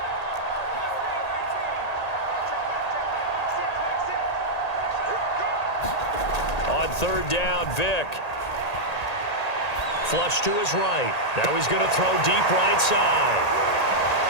On 3rd down, Vic. Flush to his right. Now he's going to throw deep right side.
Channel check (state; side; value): late; right; 1.8 ms